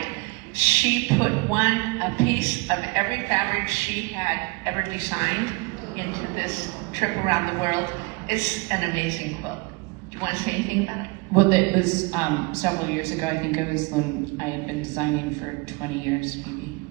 she put a piece of every fabric she had ever designed into this trip around the world. It's an amazing quilt. Do you want to say anything about it? Well, it was several years ago. I think it was when I had been designing for 20 years, maybe,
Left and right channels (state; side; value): quieter; left; 27.5 dB